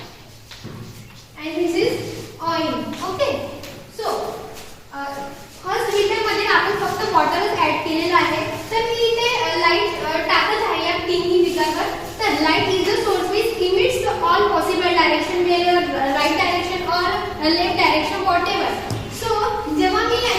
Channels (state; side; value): identical; both; correlation 1.00